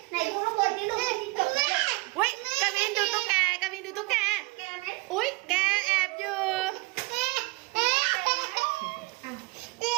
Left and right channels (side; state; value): left; quieter; 23.8 dB